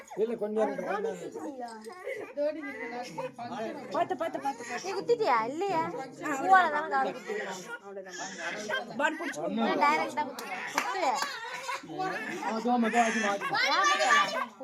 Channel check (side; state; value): both; identical; correlation 1.00